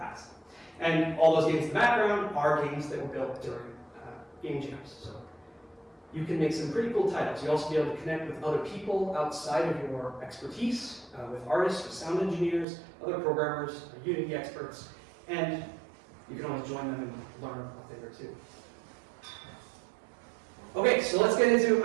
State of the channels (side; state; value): left; drops out; at 12.7 s